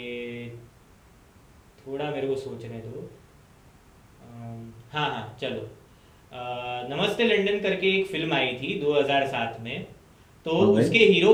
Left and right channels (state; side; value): identical; both; correlation 1.00